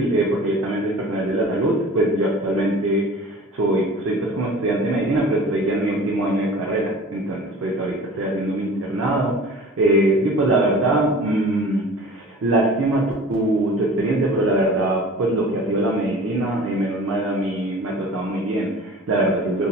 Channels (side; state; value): both; normal; correlation 0.42